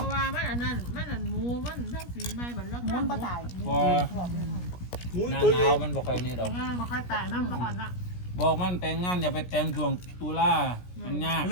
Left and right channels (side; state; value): right; late; 17 ms